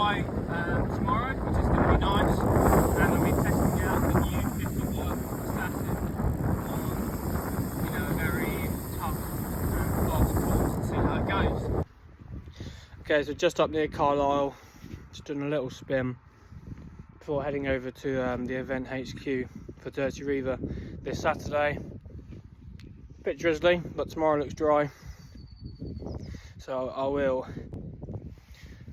tomorrow, which is going to be nice. And we'll be testing out the new 50-watt static on, a very tough and fast course and see how it goes. Okay, so just up near Carlisle, just doing a little spin before heading over to the event HQ for Dirty Reiver this Saturday. Bit drizzly, but tomorrow looks dry, so I will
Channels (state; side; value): identical; both; correlation 1.00